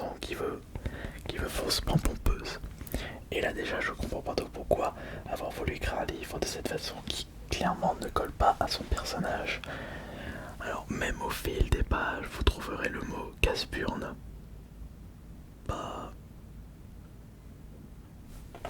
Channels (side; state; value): both; identical; correlation 1.00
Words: qui veut faussement pompeuse. Et là déjà, je comprends pas pourquoi avoir voulu écrire un livre de cette façon qui clairement ne colle pas à son personnage. Alors même au fil des pages, vous trouverez le mot casse-burne. Bah...